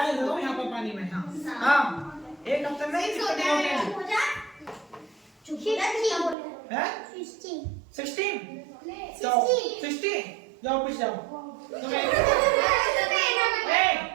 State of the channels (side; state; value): left; drops out; at 6.4 s